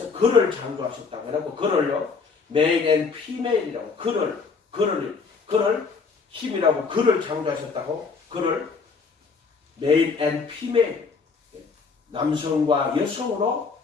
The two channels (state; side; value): quieter; right; 4.9 dB